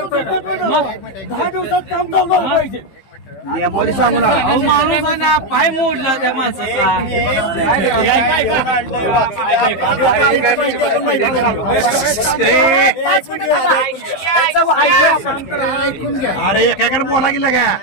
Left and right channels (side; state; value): right; late; 15 ms